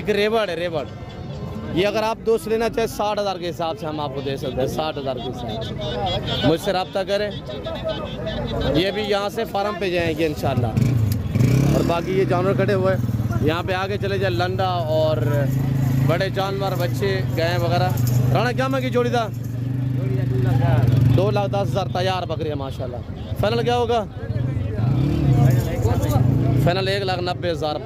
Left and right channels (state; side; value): identical; both; correlation 1.00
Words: रेवड़ है, रेवड़। ये अगर आप दोस्त लेना चाहे 60,000 के हिसाब से हम आपको दे सकते हैं। 60,000 के हिसाब से मुझसे रब्ता करें। ये भी यहाँ से फार्म पे जाएंगे इंशाल्लाह। और बाकी ये जानवर खड़े हुए यहाँ पे आगे चले जाए, लंडा और बड़े जानवर, बच्चे, गाय वगैरह। राणा क्या मांगी जोड़ी था? 2,10,000 तैयार बकरियाँ माशाल्लाह। फाइनल क्या होगा? फाइनल 1,90,000